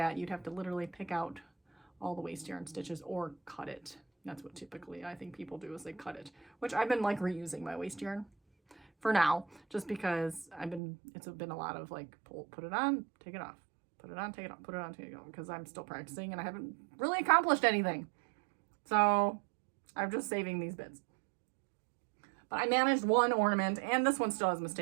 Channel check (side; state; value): left; drops out; at 10.8 s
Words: you'd have to literally pick out all the waist yarn stitches or cut it. That's what typically I think people do, is they cut it, which I've been like reusing my waist yarn for now, just because it's been a lot of like put it on, take it off, put it on, take it off, put it on, take it off, because I'm still practicing and I haven't really accomplished anything. So I'm just saving these bits. But I managed 1 ornament, and this one still has a